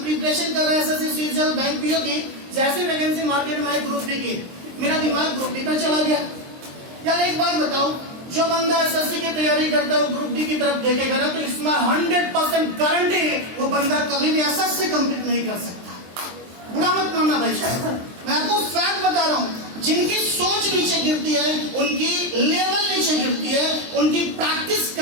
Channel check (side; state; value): left; late; 23 ms